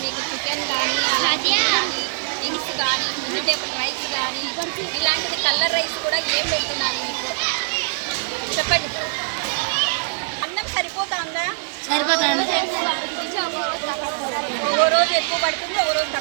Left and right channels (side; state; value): left; silent; 64 dB below the other